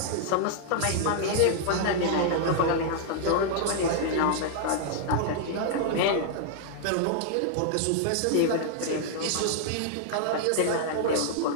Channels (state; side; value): different; both; correlation -0.01